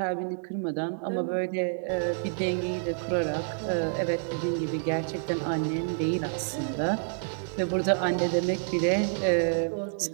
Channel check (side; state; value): left; silent; digital silence